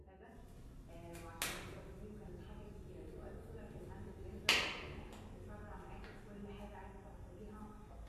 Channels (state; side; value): identical; both; correlation 1.00